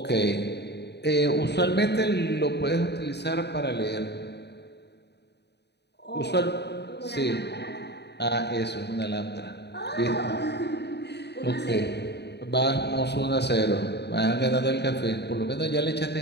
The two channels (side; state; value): right; late; 0.49 ms